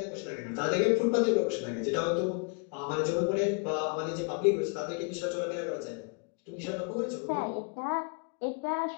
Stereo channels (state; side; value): quieter; right; 36.0 dB